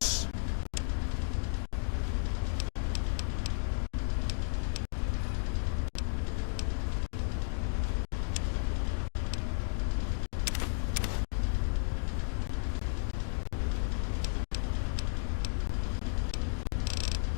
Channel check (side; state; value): right; silent; digital silence